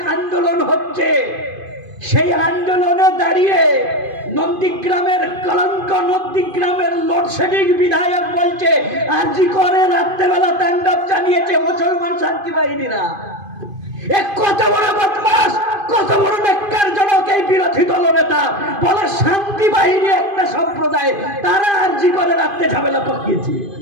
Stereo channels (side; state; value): left; late; 2.5 ms